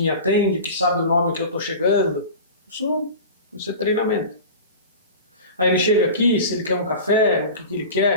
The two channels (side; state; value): both; inverted; correlation -0.33